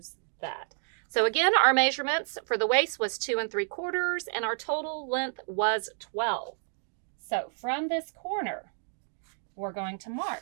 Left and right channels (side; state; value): left; silent; digital silence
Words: that. So again, our measurements for the waist was 2 3/4, and our total length was 12. So from this corner, we're going to